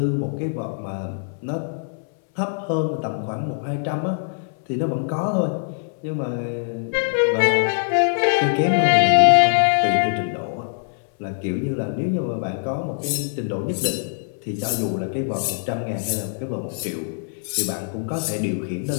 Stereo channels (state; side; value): silent; right; 63 dB below the other